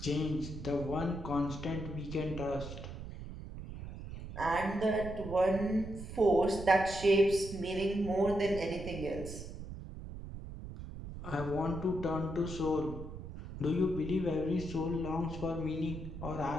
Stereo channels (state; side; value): noise; right; rumble, 10 dB below the sound